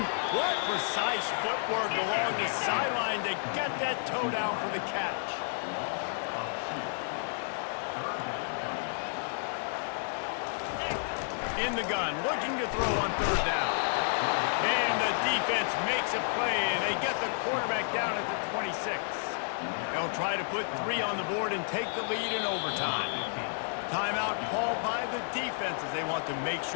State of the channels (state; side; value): silent; right; digital silence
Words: What precise footwork along the sideline to get that toe down for the catch. In the gun, looking to throw on third down. And the defense makes a play, and they get the quarterback down at the 26. They'll try to put 3 on the board and take the lead in overtime. Timeout called by the defense as they want to make